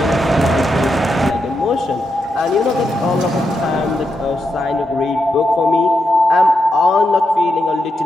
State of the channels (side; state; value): both; normal; correlation 0.85